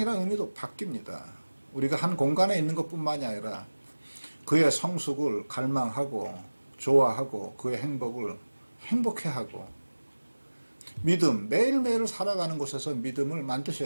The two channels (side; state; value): both; inverted; correlation -1.00